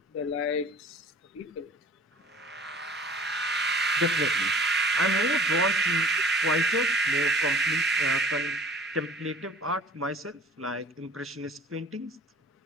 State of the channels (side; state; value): both; normal; correlation 0.48